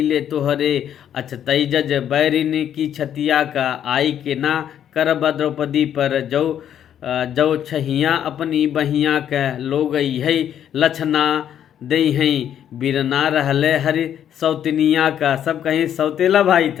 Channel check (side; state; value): right; quieter; 9.8 dB